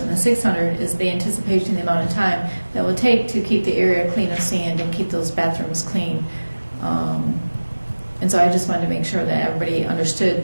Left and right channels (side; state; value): both; inverted; correlation -1.00